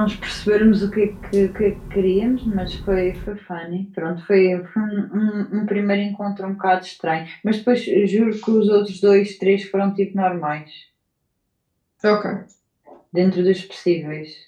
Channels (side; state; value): both; identical; correlation 1.00